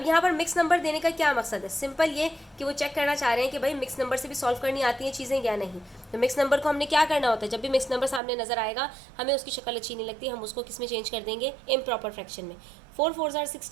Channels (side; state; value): left; drops out; at 8.2 s